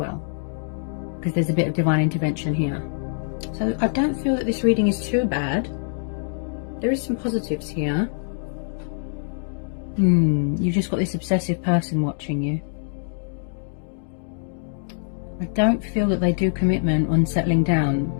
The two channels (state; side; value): silent; right; digital silence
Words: because there's a bit of divine intervention here. So I don't feel that this reading is too bad. There is some positives here. You've just got this obsessive person watching you. I don't feel that they do commitment on settling down.